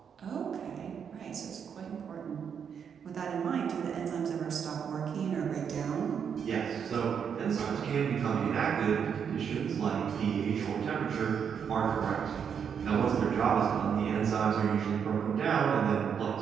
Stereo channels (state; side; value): quieter; left; 7.4 dB